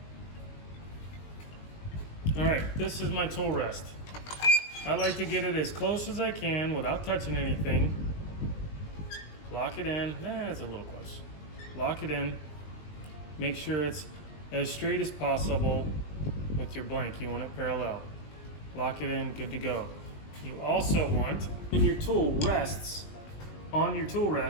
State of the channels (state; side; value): late; right; 20 ms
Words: All right, this is my tool rest. I like to get it as close as I can without touching anything. Lock it in, it's a little close. Lock it in, make sure it's as straight as possible with your blank. You want it parallel. Lock it in, good to go. You also want, when your tool rests, on your tool